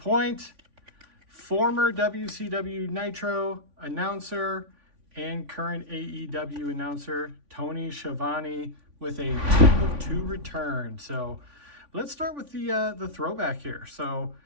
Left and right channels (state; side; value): late; left; 3.5 ms